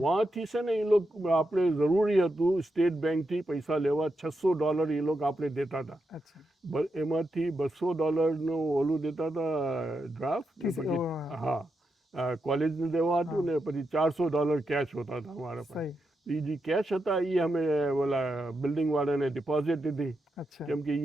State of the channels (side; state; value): both; normal; correlation 0.85